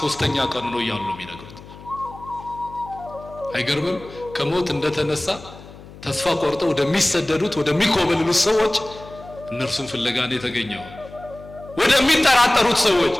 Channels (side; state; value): left; noise; hum, 18 dB below the sound